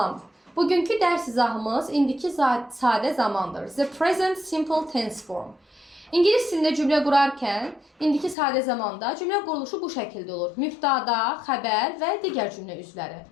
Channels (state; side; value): drops out; right; at 8.3 s